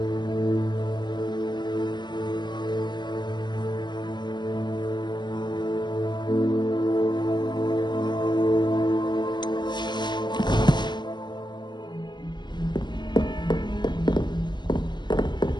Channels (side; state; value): right; late; 0.22 ms